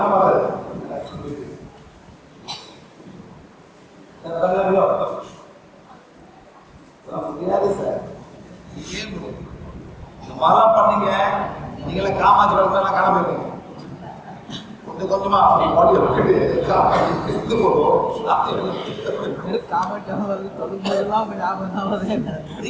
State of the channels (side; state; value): both; identical; correlation 1.00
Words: முடியாது சார். இந்த மாதிரிலாம் பண்ணீங்க. நீங்களே காமாட்சி வளர்த்தெல்லாம் காண போயிருக்கீங்க. கொஞ்சம் கொஞ்சமா பாடியை விட்டுட்டு இது போதும்.